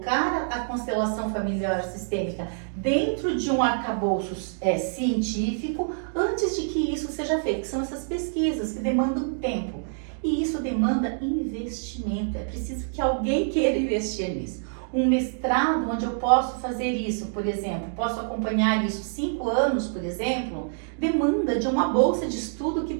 a constelação familiar sistêmica dentro de um arcabouço científico antes de que isso seja feito, que são essas pesquisas que demandam tempo. E isso demanda investimento, é preciso que alguém queira investir nisso. Um mestrado onde eu posso fazer isso, por exemplo, posso acompanhar isso 5 anos, por exemplo, demanda de uma bolsa de estudo que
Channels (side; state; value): left; silent; digital silence